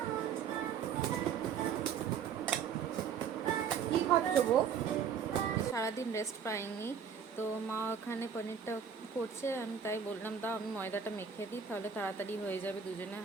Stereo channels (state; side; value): quieter; left; 7.1 dB